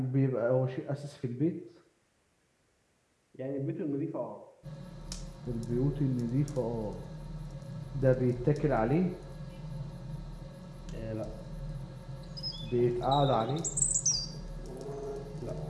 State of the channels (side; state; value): both; identical; correlation 1.00